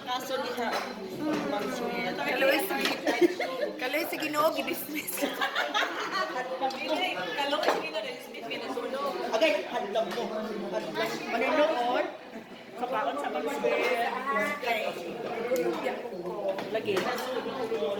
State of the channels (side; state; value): both; identical; correlation 1.00